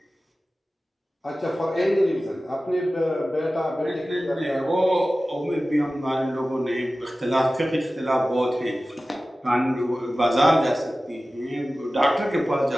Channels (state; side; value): normal; both; correlation 0.96